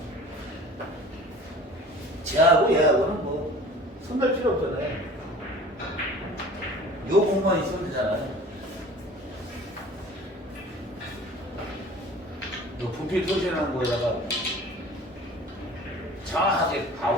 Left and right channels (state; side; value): normal; both; correlation 0.44